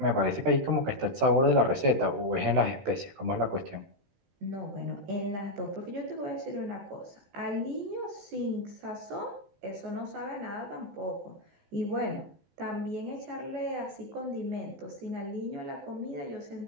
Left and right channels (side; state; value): left; late; 15 ms